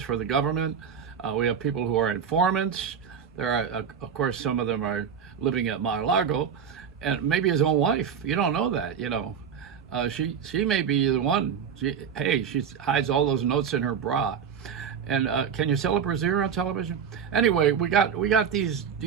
government. We have people who are informants. There are, of course, some of them are living at Mar-a-Lago, and maybe his own wife. You don't know that, She may be the one. She hides all those notes in her bra. And can you sell a brassiere on television? Anyway, we got these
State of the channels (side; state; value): left; quieter; 7.4 dB